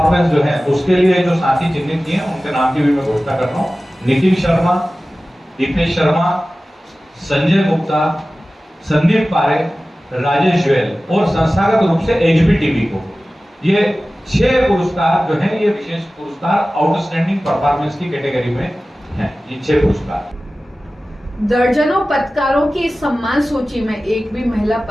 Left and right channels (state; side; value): normal; both; correlation 0.96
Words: जो है उसके लिए जो साथी चिन्हित किए हैं उनके नाम की भी मैं घोषणा कर रहा हूँ। नितिन शर्मा, दीपेश शर्मा, संजय गुप्ता, संदीप पारे, राजेश गोयल और संस्थागत रूप से HBTV को। ये 6 पुरस्कार जो है ये विशेष पुरस्कार आउटस्टैंडिंग परफॉर्मेंस की कैटेगरी में हैं। ये 6 पुरस्कार। दर्जनों पत्रकारों की इस सम्मान सूची में एक भी महिला